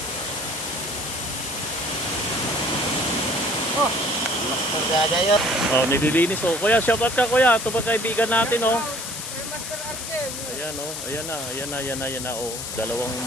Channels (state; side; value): noise; left; hiss, 7 dB below the sound